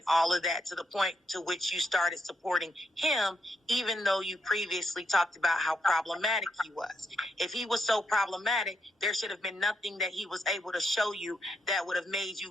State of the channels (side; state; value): both; normal; correlation 0.80